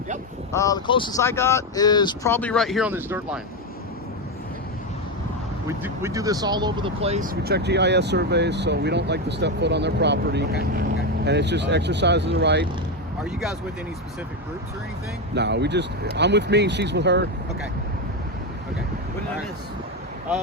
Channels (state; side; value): normal; both; correlation 0.11